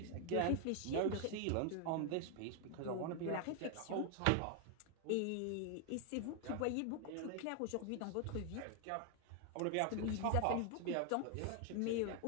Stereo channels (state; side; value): different; both; correlation 0.00